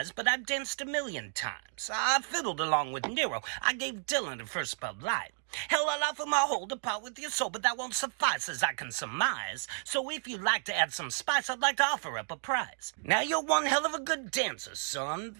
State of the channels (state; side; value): silent; left; digital silence